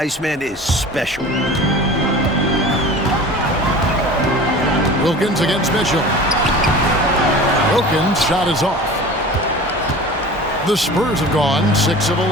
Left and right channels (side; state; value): both; normal; correlation 0.38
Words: is special. Wilkins against Mitchell. Wilkins' shot is off. The Spurs have gone 6 of